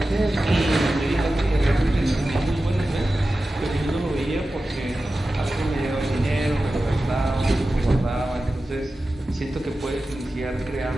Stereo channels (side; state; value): both; normal; correlation 0.94